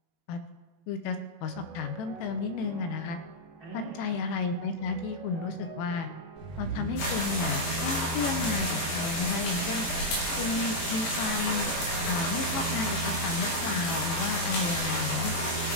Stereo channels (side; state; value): right; late; 18 ms